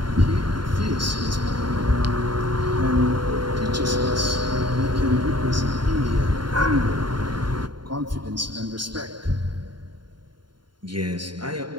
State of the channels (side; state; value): left; late; 0.72 ms